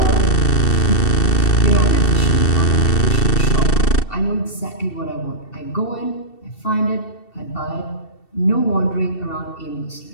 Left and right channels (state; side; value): late; right; 2.7 ms